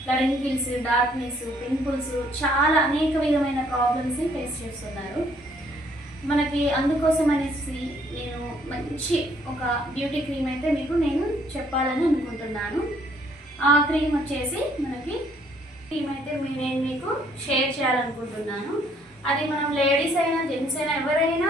రింకిల్స్, డార్క్నెస్, పింపుల్స్, చాలా అనేక విధమైన ప్రాబ్లమ్స్ని ఫేస్ చేస్తున్నారు. మనకి అందుకోసం అనేసి నేను మంచి ఒక బ్యూటీ క్రీమ్ అయితే నేను చెప్పాలని అనుకుంటున్నాను. ఆ క్రీమ్ వచ్చేసి నేను మీకు షేర్ చేయాలనుకుంటున్నాను. అది మనం లేడీస్ అయినా జెంట్స్ అయినా ఎవరైనా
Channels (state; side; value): normal; both; correlation 0.65